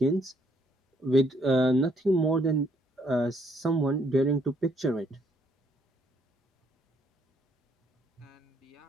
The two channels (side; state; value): both; normal; correlation 0.69